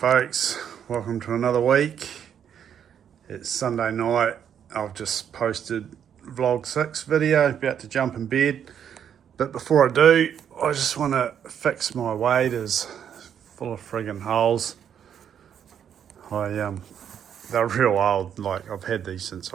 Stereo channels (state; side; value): quieter; left; 8.7 dB